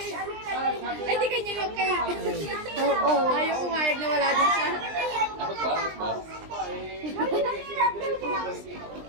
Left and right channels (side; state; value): left; late; 20 ms